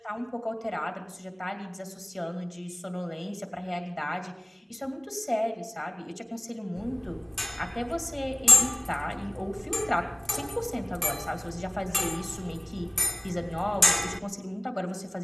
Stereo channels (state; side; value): normal; both; correlation 0.96